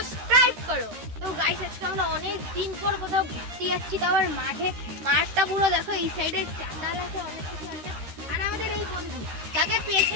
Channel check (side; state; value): left; late; 13 ms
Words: করো। তো গাইস আজকে আমরা অনেক দিন পর কোথাও ঘুরতে যাচ্ছি, তো আবার মাঠটা পুরো দেখো, এই সাইডে চাঁদাল আছে, অনেক কিছু আছে। আর আমাদের এই বন্ধু তাকে